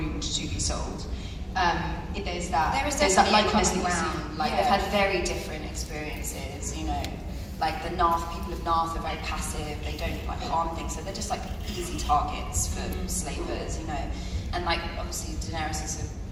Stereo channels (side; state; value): both; identical; correlation 1.00